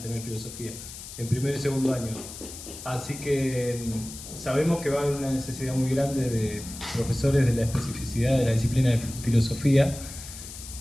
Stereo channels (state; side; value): noise; left; hiss, 12 dB below the sound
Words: tener filosofía en primer y segundo año. Así que sabemos que va a haber una necesidad muy grande de profesores de la especificidad de la disciplina de filosofía